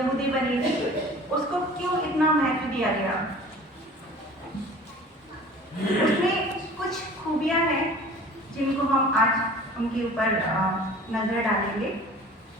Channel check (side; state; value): both; normal; correlation 0.44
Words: बनी थी, उसको क्यों इतना महत्व दिया गया? उसमें कुछ खूबियां हैं जिनको हम आज उनके ऊपर नजर डालेंगे।